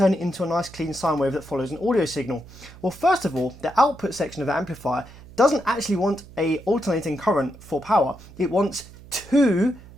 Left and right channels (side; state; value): right; noise; hum, 19 dB below the sound